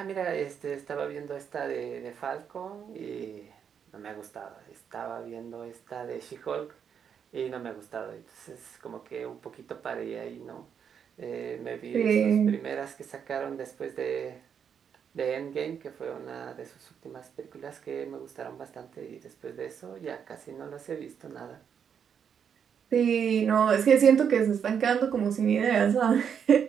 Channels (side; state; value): left; quieter; 7.6 dB